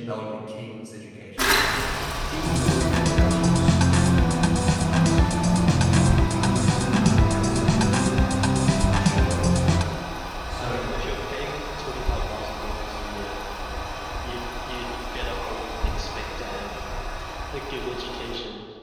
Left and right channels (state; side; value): identical; both; correlation 1.00